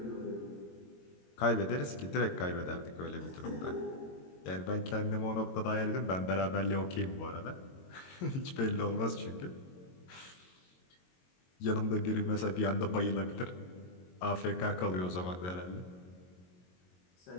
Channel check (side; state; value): right; late; 22 ms